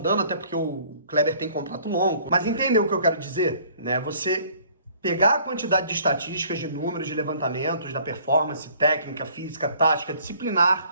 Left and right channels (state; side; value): inverted; both; correlation -0.56